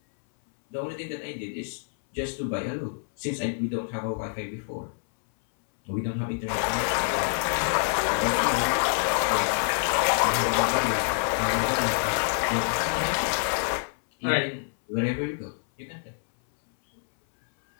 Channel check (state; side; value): silent; right; 60 dB below the other